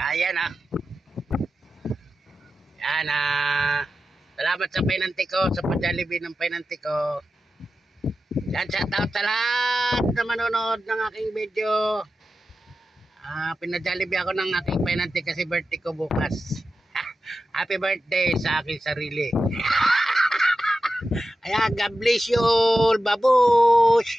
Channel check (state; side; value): normal; both; correlation 0.92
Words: na. Ayan na. Salamat sa pinanti ko, sa pa-Jollibee ng pinanti ko. Yan, shout out sa lahat na manonood ng aking video. Pina-Jollibee ako ng aking pinanti kasi birthday ko bukas. Happy birthday sa aking sarili. Ayan, God bless you all,